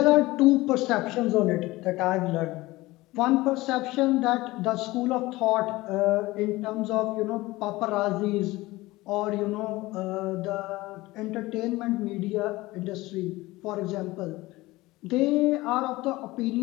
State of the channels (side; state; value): right; quieter; 19.6 dB